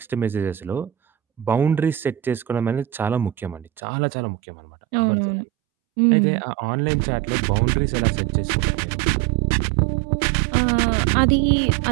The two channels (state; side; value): drops out; left; at 3.8 s